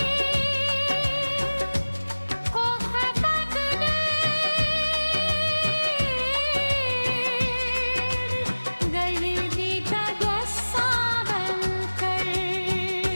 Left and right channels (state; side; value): inverted; both; correlation -1.00